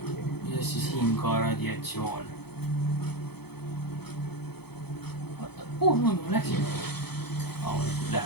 ja siis siin ka radiatsioon. Kuhu ma läksin? Ma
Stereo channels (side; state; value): right; late; 0.97 ms